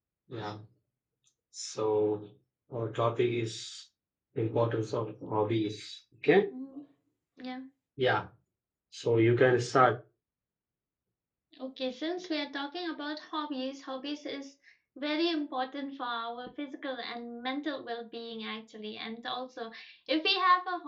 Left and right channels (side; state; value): both; identical; correlation 1.00